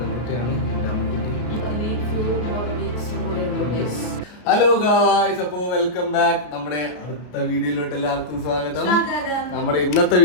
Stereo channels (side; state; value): right; late; 33 ms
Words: എൻ്റെ അമ്മുക്കുട്ടി. ഹലോ ഗായ്സ്, അപ്പോൾ വെൽക്കം ബാക്ക്. നമ്മുടെ അടുത്ത വീഡിയോയിലോട്ട് എല്ലാവർക്കും സ്വാഗതം. നമ്മുടെ ഇന്നത്തെ